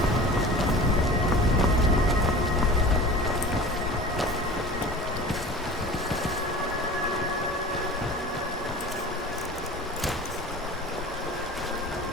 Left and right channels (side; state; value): both; normal; correlation 0.39